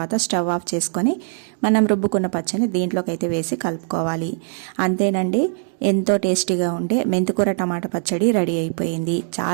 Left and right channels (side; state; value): left; silent; digital silence